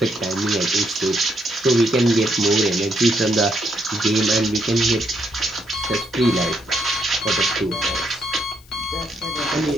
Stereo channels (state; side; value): noise; left; hiss, 27 dB below the sound